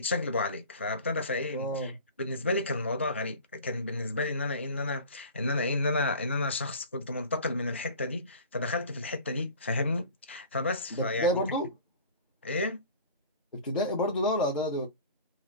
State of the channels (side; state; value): both; inverted; correlation -0.41